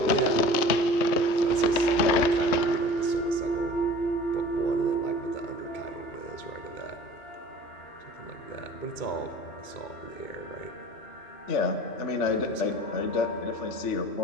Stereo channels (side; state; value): right; late; 3.2 ms